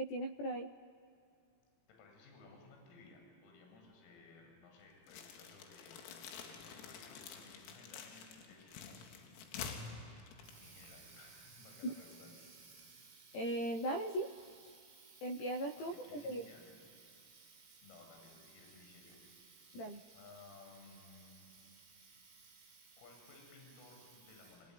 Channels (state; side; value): late; right; 18 ms